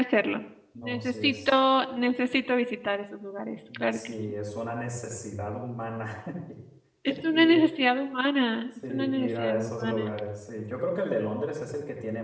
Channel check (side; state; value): both; identical; correlation 1.00